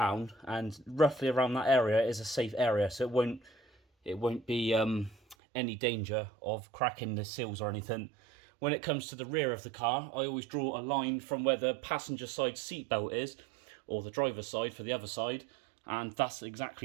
and roughly around that area is a safe area, so it won't be any danger of cracking the seals or anything. When it comes to the rear of the car, I always draw a line from where the passenger side seat belt is, or the driver's side for the other side, and that's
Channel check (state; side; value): drops out; left; at 5.4 s